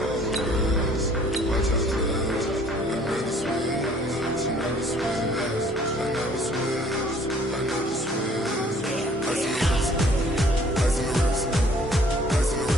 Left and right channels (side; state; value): both; normal; correlation 0.57